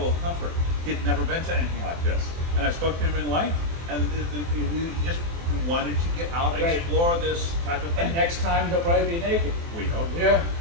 of comfort. He'd never been to anything like this. And I spoke to him in length, and he just who wanted to get out and Right. explore this type of thing. And next time he'll probably be naked. We hope. Yeah.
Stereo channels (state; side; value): late; left; 24 ms